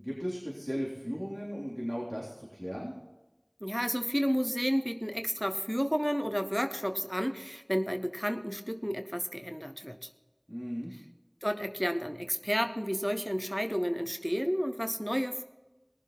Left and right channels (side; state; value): both; identical; correlation 1.00